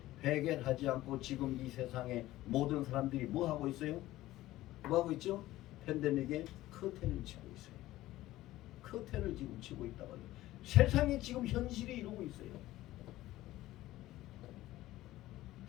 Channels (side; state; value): right; quieter; 16.0 dB